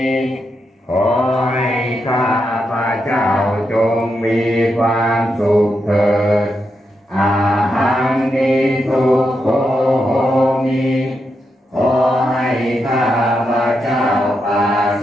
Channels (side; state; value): both; normal; correlation 0.84